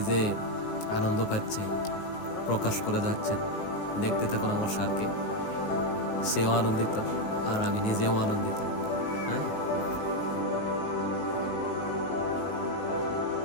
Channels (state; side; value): late; right; 19 ms